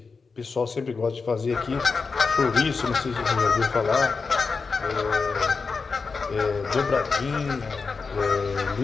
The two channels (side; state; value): right; quieter; 4.7 dB